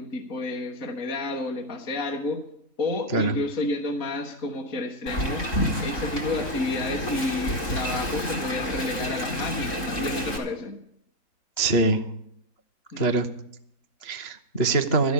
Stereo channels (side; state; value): right; late; 3.7 ms